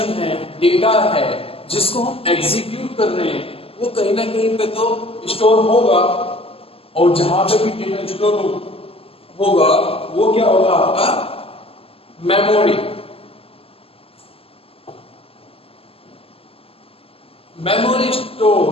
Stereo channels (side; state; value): right; late; 0.28 ms